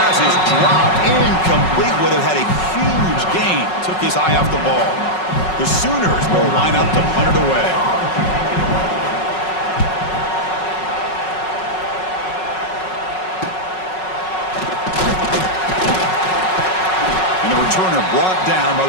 is dropped incomplete. Would have had a huge gain. Took his eye off the ball. The Sooners will line up to punt it away. Returner brought down by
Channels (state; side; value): late; right; 5.4 ms